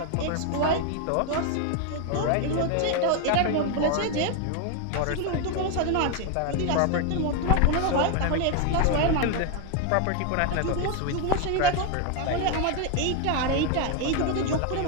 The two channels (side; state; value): both; different; correlation 0.01